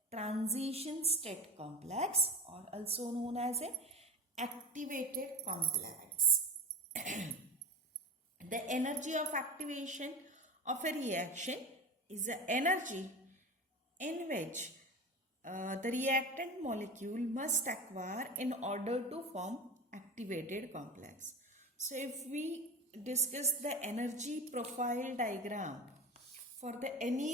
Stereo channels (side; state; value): both; normal; correlation 0.27